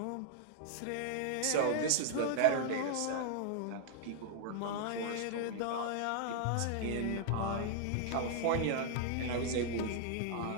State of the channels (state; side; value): different; both; correlation -0.01